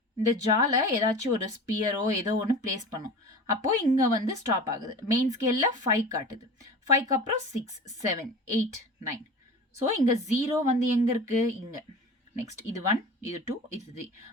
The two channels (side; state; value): both; normal; correlation 0.35